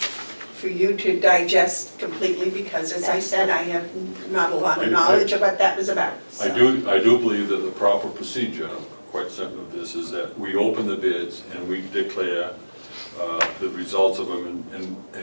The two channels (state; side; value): inverted; both; correlation -1.00